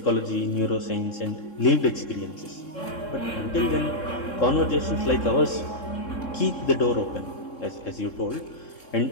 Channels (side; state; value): right; late; 3.7 ms